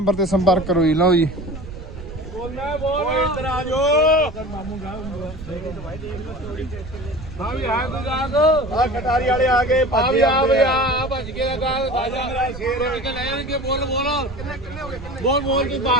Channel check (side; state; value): right; noise; rumble, 13 dB below the sound